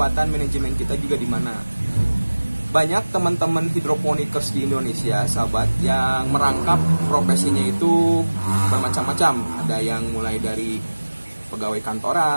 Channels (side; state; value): both; inverted; correlation -1.00